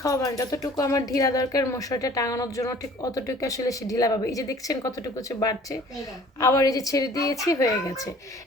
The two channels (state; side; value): normal; both; correlation 0.51